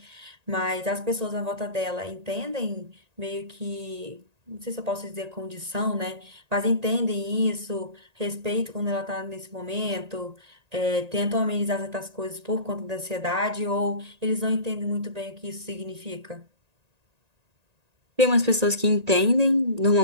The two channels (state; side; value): late; left; 1.8 ms